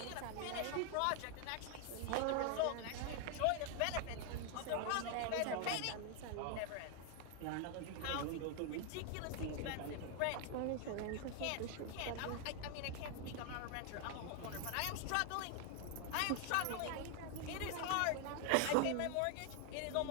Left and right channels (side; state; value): both; different; correlation 0.00